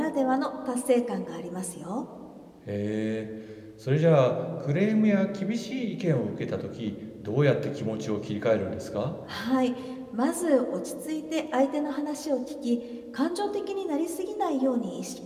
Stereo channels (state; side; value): identical; both; correlation 1.00